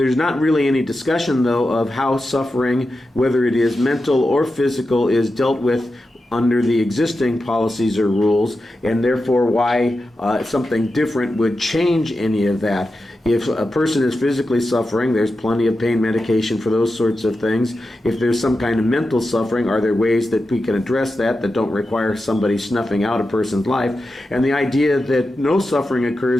not really any discussion, though, of how suffering, whether it is mental or physical, is dealt with under the existing policies or rules, and therefore why something different would change any of that. If a person is physically suffering, there's plenty of pain medication for those sorts of things. If there's some kind of mental suffering, are there ways that we can address that don't require somebody snuffing out a person's life? And the idea that no suffering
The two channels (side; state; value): both; normal; correlation 0.91